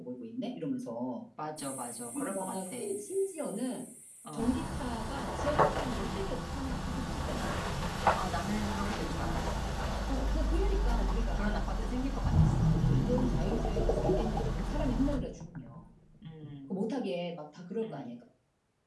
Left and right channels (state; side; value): identical; both; correlation 1.00